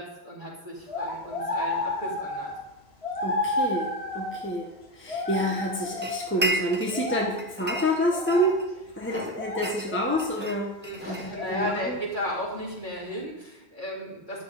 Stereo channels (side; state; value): both; normal; correlation 0.14